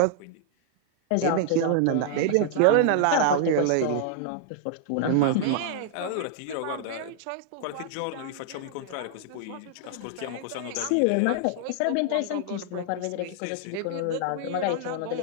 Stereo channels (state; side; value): different; both; correlation -0.01